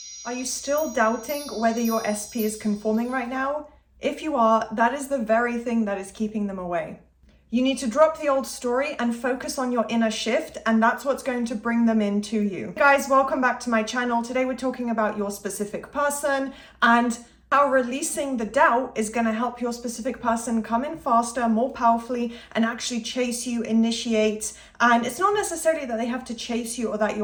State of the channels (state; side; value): identical; both; correlation 1.00